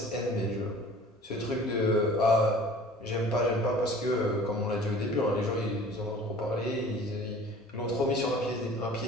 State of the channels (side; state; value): both; normal; correlation 0.46